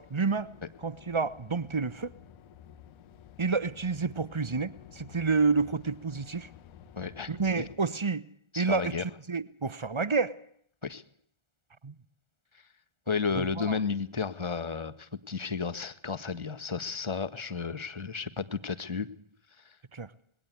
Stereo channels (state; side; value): late; left; 1.4 ms